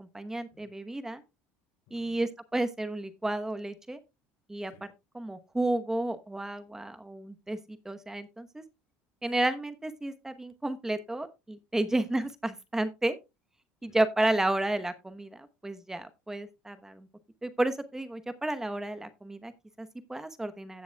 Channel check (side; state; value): both; normal; correlation 0.96